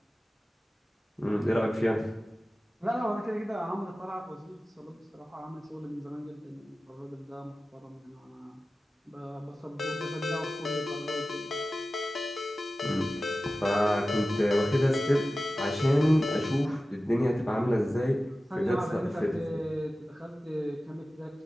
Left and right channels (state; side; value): normal; both; correlation 0.95